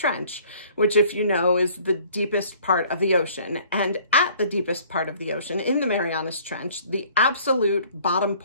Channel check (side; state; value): both; inverted; correlation -0.55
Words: which, if you know, is the deepest part of the ocean. And at the deepest part of the ocean, in the Marianas Trench, the absolute bottom